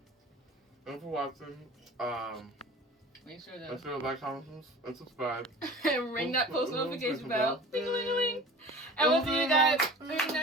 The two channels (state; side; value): normal; both; correlation 0.40